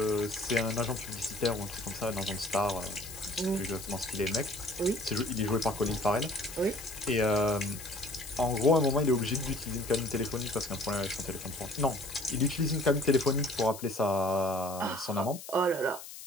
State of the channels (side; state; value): left; noise; hiss, 13 dB below the sound